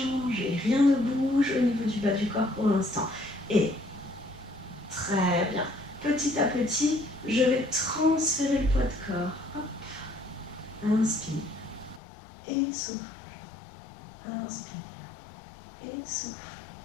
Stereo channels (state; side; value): drops out; right; at 12.0 s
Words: Rien ne bouge au niveau du bas du corps pour l'instant. Et très bien. Petit à petit, je vais transférer le poids de corps. Hop. Inspire et souffle. Inspire et souffle.